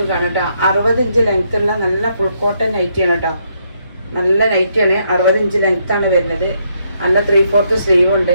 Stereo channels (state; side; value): inverted; both; correlation -0.75